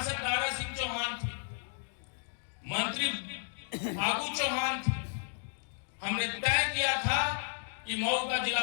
दारा सिंह चौहान थे, मंत्री फागू चौहान थे। हमने तय किया था कि मऊ का जिला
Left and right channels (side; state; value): right; silent; 56 dB below the other